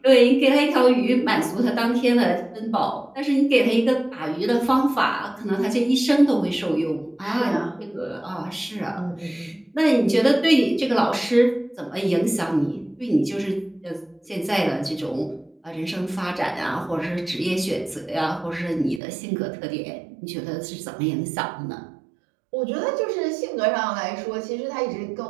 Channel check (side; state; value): left; drops out; at 19.0 s